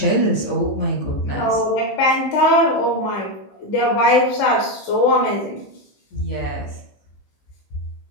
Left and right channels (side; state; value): right; late; 15 ms